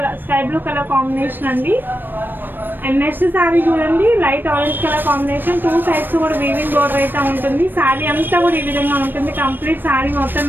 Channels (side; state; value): left; late; 0.094 ms